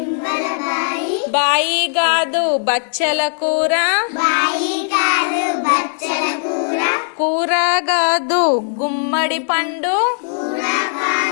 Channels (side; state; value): right; silent; digital silence